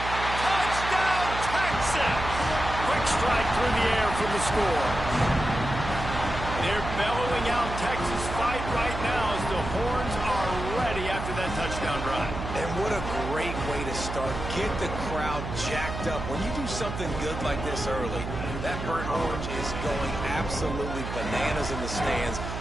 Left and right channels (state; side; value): noise; right; hum, 6 dB below the sound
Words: Touchdown, intercepts. Quick strike through the air for the score. They're bellowing out Texas fight right now as the horns are ready after that touchdown drive. And what a great way to start. Get the crowd jacked up. When you do something good like this early, that burnt orange is going absolutely bananas in the stands.